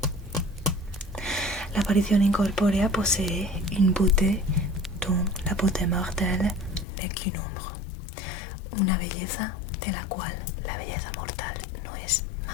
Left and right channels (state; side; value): drops out; right; at 6.9 s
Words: La aparición incorpórea posee une beauté dont la beauté mortelle n'est qu'une ombre, una belleza de la cual la belleza mortal no es